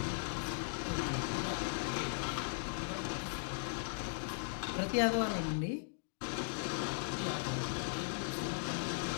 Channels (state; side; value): silent; right; digital silence